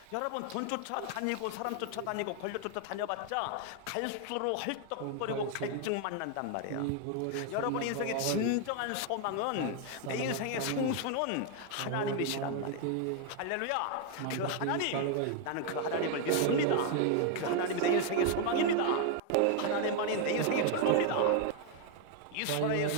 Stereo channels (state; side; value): different; both; correlation 0.01